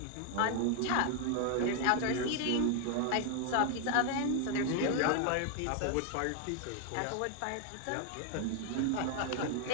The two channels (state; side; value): different; both; correlation 0.01